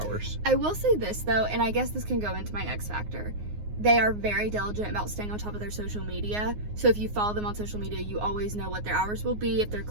I will say this though, and I guess this can go into my X Factor. They are very diligent about staying on top of their social media. So if you follow them on social media, you always know what their hours will be, if they're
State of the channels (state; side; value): late; left; 9.6 ms